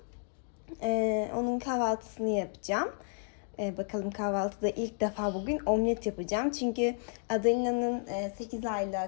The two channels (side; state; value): right; silent; 56 dB below the other